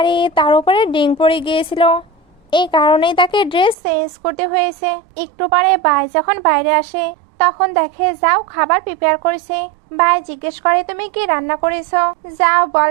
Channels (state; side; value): drops out; left; at 3.8 s